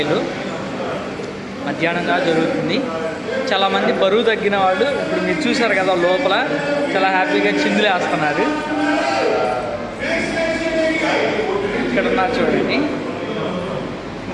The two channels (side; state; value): both; identical; correlation 1.00